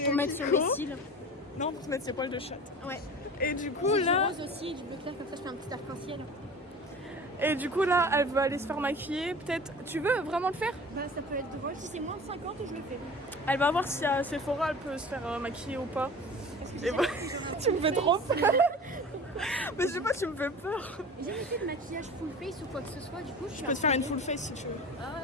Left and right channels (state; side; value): normal; both; correlation 0.38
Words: Pour mettre sur les cils. Non, pour se mettre ses poils de chatte. Ouais. Et du coup, Du là... rose aussi et du bleu clair, comme ça je fais un petit arc-en-ciel. Et du coup, là, elle veut aller se faire maquiller. Peut-être... Tu veux vraiment le faire? Bah ça peut être drôle. Si c'est moins de 50, je le fais. Elle va voir si à Sephora, elle peut se faire maquiller ou pas. Parce que Et bah, tu me fais trop peur. Mais je sais pas, tu me fais peur. J'ai jamais fait de maquillage full face ou quoi que ce soit, du coup je Je peux te faire une full face si tu veux.